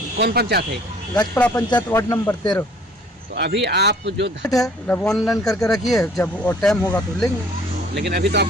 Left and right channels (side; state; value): both; normal; correlation 0.55